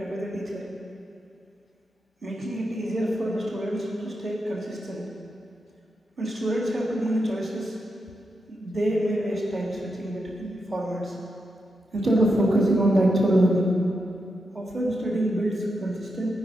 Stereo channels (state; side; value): normal; both; correlation 0.85